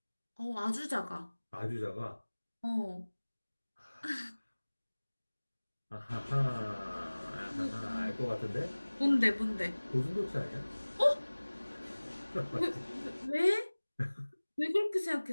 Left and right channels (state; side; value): inverted; both; correlation -1.00